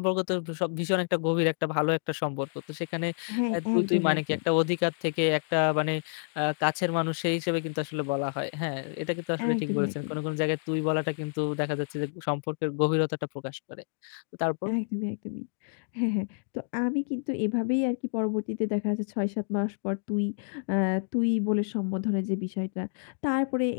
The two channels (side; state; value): right; silent; digital silence